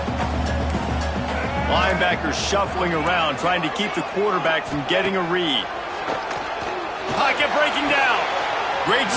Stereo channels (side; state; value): both; identical; correlation 1.00